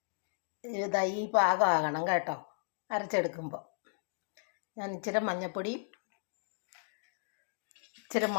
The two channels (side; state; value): right; silent; digital silence